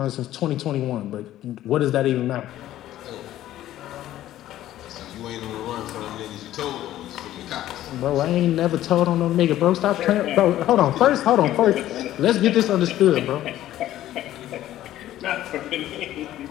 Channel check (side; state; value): right; quieter; 13.5 dB